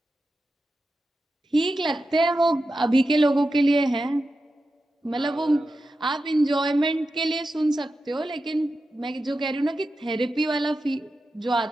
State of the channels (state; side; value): normal; both; correlation 0.91